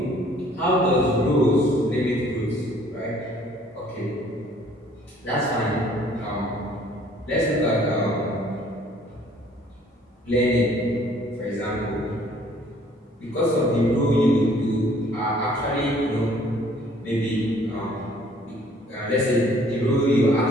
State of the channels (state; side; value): normal; both; correlation 0.58